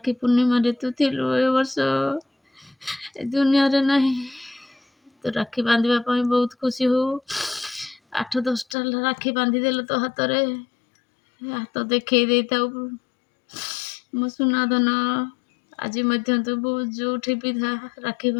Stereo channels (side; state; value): right; drops out; at 8.8 s